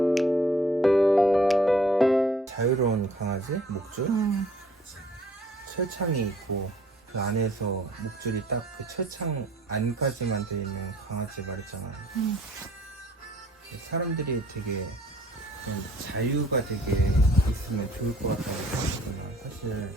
자유로운 강아지, 목줄, 철창이 있고 그 안에서 목줄이 딱 그 철창 안까지만 돼 있는 강아지 말했잖아. 사람들이 되게 좀 자유가 되게 있으면 좋을 것 같다고 생각하잖아. 사실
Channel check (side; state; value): both; normal; correlation 0.57